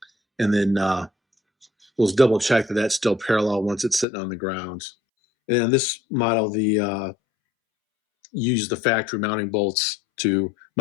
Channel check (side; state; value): right; drops out; at 4.0 s